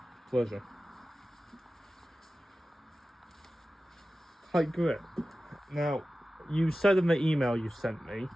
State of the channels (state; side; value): normal; both; correlation 0.94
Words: Pleasure. Hi, Grit. Now, you said in the email you sent me